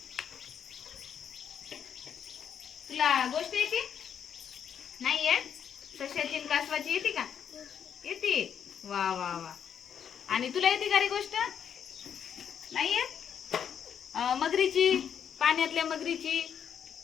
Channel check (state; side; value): quieter; right; 8.2 dB